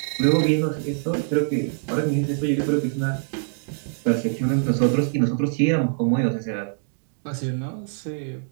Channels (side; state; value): left; silent; digital silence